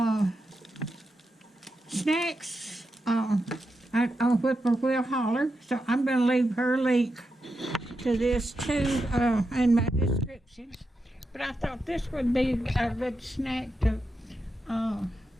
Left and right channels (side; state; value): both; normal; correlation 0.87